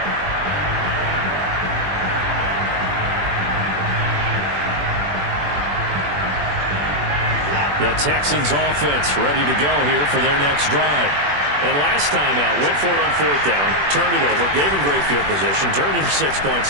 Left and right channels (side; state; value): left; late; 21 ms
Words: The Texans offense ready to go here for their next drive. And last time out, went for it on 4th down, turned it over, gave him great field position, turned into 6 points,